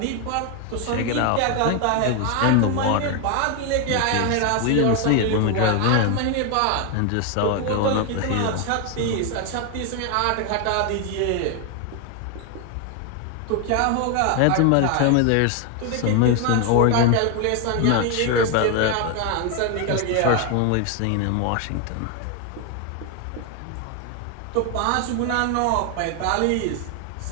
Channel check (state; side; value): different; both; correlation 0.01